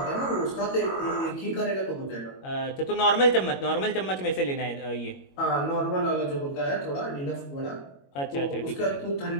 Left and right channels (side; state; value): right; late; 21 ms